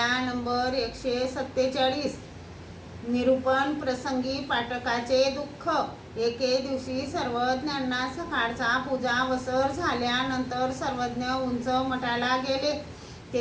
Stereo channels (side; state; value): both; identical; correlation 1.00